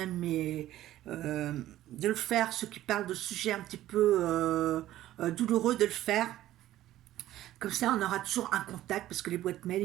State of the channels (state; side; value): quieter; left; 14.0 dB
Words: de le faire, ceux qui parlent de sujets un petit peu douloureux, de le faire. Comme ça, on aura toujours un contact, parce que les boîtes mail, ils